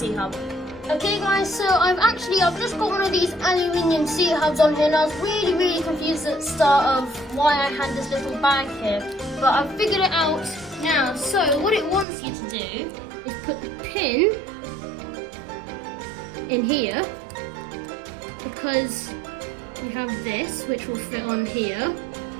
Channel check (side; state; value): left; drops out; at 12.1 s